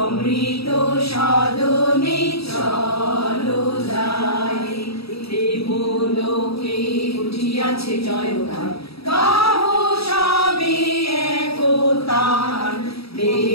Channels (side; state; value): right; late; 0.77 ms